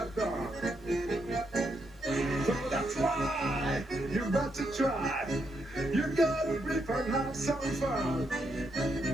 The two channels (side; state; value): both; normal; correlation 0.79